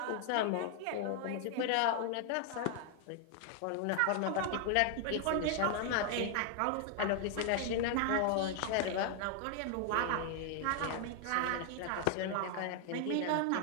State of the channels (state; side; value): different; both; correlation 0.00